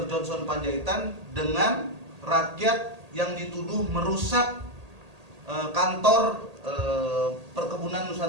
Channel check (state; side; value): late; left; 1.8 ms